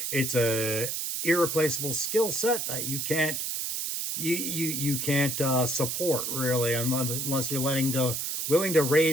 irreplaceable skill set that you can't support really unless you're willing to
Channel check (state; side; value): noise; right; hiss, 2 dB below the sound